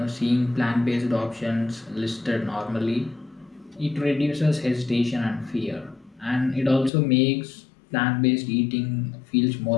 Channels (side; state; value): right; drops out; at 6.9 s